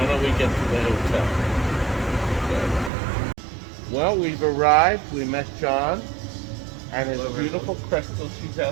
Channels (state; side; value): drops out; left; at 2.9 s